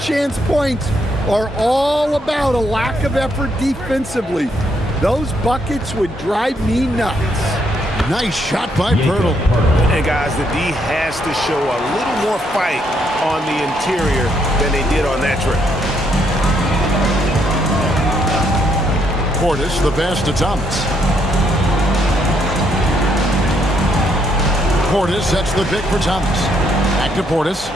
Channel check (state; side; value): normal; both; correlation 0.73